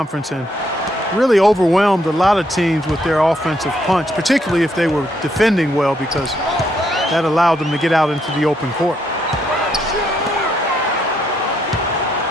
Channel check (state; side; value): normal; both; correlation 0.74